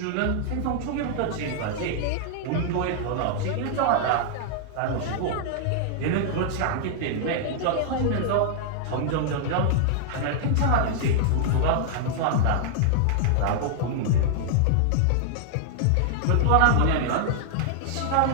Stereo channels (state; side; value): different; both; correlation -0.01